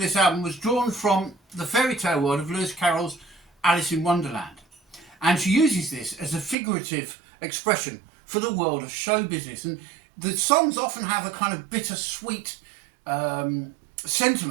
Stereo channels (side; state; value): left; drops out; at 6.6 s